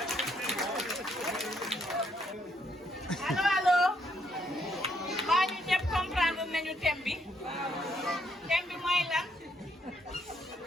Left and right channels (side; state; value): both; normal; correlation 0.72